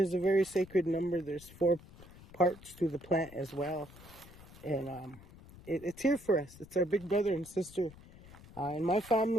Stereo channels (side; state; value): left; noise; rumble, 20 dB below the sound